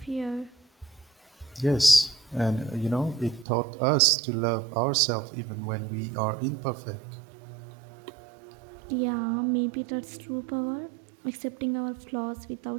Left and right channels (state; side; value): drops out; left; at 3.5 s